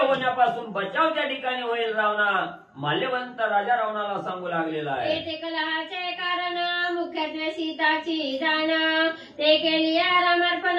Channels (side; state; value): both; identical; correlation 1.00